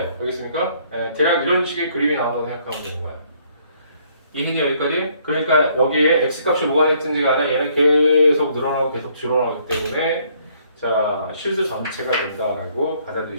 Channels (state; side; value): inverted; both; correlation -0.65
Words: 알겠습니까? 대략 이런 식의 그림이 나온다고 생각하면 되는 거예요. 이민이 여기까지. 그러니까 여기에 x 값이 뭐가 됐든지 간에 얘는 계속 늘어나고 계속 줄어나기 때문에 자 실수 전체가 된다라고